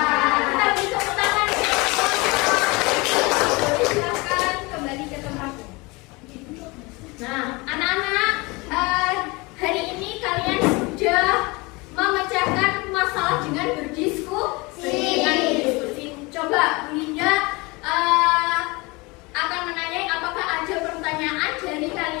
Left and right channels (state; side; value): quieter; right; 25.3 dB